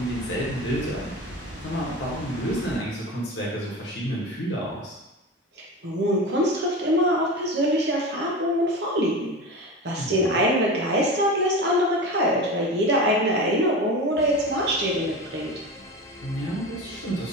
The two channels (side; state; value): both; normal; correlation 0.28